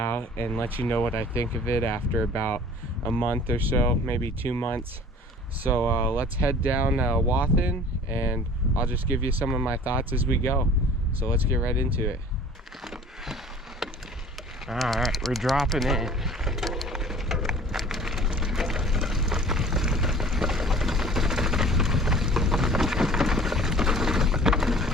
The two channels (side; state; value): both; normal; correlation 0.47